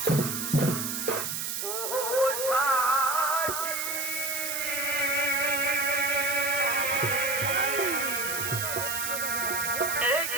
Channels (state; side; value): noise; right; hiss, 3 dB below the sound